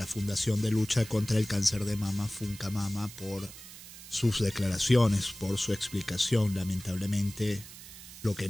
Fundación de Lucha contra el Cáncer de Mama, FUNCAMAMA, por sus declaraciones, por su explicación. Lamentablemente, lo que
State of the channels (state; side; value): noise; right; hiss, 15 dB below the sound